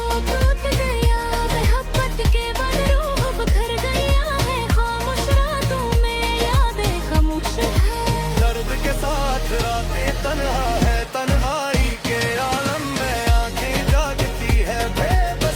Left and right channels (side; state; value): both; identical; correlation 1.00